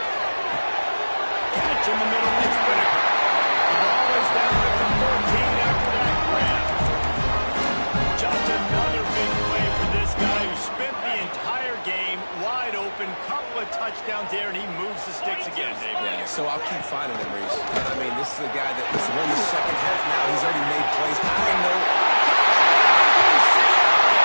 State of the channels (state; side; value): inverted; both; correlation -1.00